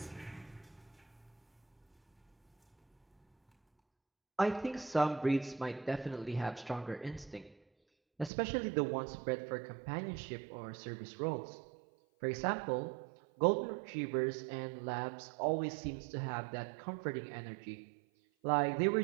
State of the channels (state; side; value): drops out; left; at 8.3 s